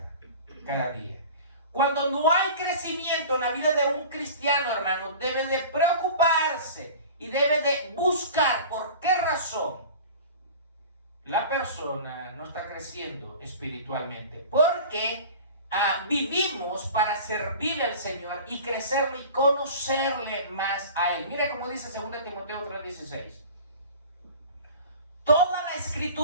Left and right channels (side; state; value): both; inverted; correlation -0.39